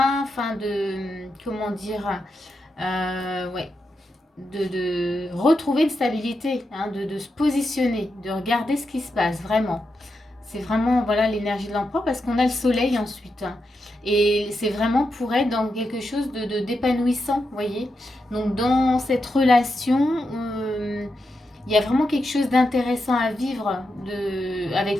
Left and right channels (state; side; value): normal; both; correlation 0.86